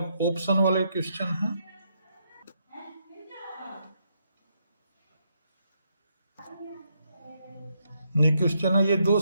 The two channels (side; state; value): both; inverted; correlation -0.77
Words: ऑप्शन वाले क्वेश्चन हैं। ये क्वेश्चन है, ये